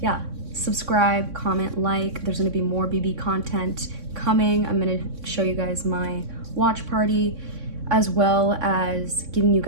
subscribe, comment, like. There's gonna be more BB content coming. I'm gonna show you guys my watch party as well as giving you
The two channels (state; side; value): late; left; 3.6 ms